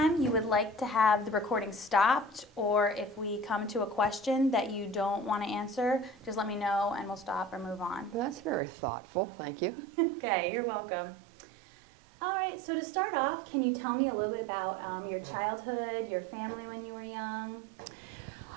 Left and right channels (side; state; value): left; drops out; at 8.6 s